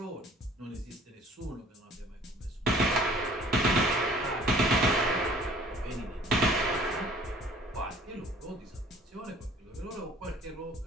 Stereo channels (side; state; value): both; normal; correlation 0.53